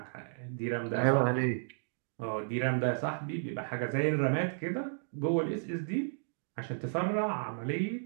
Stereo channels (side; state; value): left; silent; digital silence